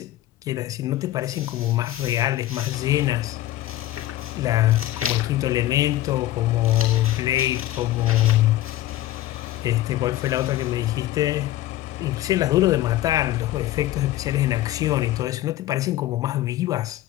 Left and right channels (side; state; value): right; quieter; 14.7 dB